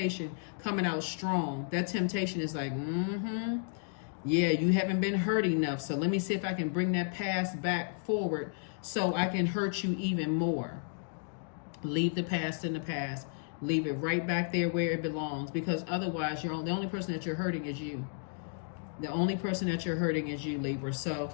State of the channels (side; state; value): right; silent; digital silence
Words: coming out strong. That temptation is like, yeah, you haven't been hurt enough. So let me see if I can bring that past back forward so I can hurt you even more. Leave the past in the past. Leave it right back there where it belongs, because otherwise the only person that you're hurting is you. The only person that you're hurting is you, Libra. So